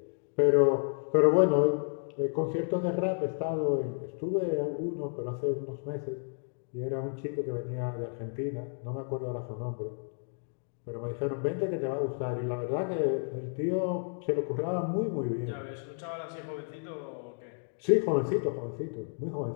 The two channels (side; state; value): right; silent; 57 dB below the other